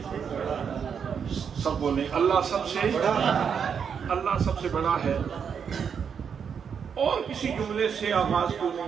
سب بولیں اللہ سب سے، اللہ سب سے بڑا ہے۔ اور کسی جملے سے آغاز کیوں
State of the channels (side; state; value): left; quieter; 7.0 dB